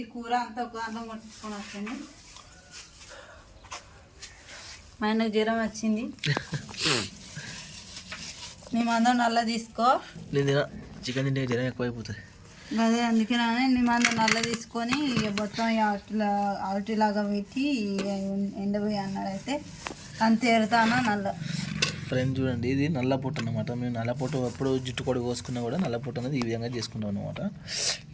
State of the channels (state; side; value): identical; both; correlation 1.00